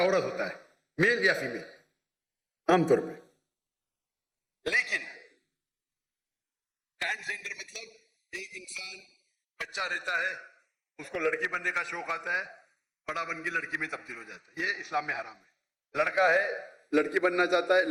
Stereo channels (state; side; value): identical; both; correlation 1.00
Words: ہوتا ہے، میل یا فیمیل عام طور پہ. لیکن ٹرانسجنڈر مطلب ایک انسان بچہ رہتا ہے، اس کو لڑکی بننے کا شوق آتا ہے، بڑا بن کے لڑکی میں تبدیل ہو جاتا ہے. یہ اسلام میں حرام ہے. لڑکا ہے لڑکی بننا چاہتا ہے،